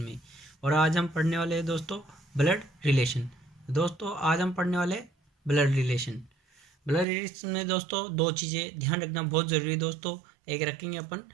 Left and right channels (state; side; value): drops out; left; at 7.1 s